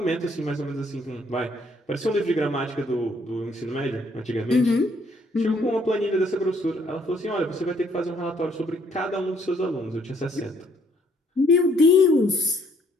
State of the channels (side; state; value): both; normal; correlation 0.66